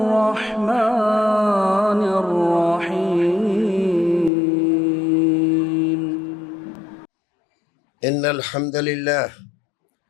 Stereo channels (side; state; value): right; drops out; at 4.3 s